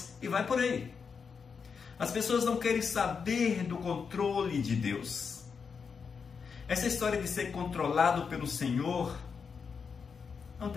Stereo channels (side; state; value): right; quieter; 5.9 dB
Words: e vai por aí. As pessoas não querem saber do controle de Deus. Essa história de ser controlado pelo Senhor não